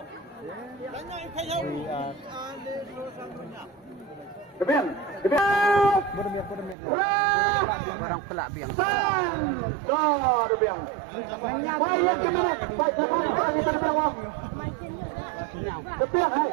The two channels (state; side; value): drops out; left; at 6.8 s